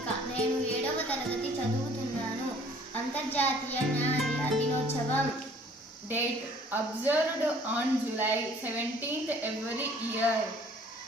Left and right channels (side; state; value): both; normal; correlation 0.55